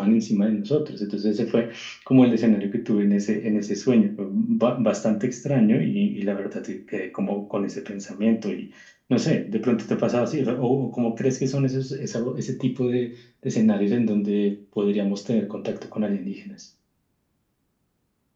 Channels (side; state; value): both; identical; correlation 1.00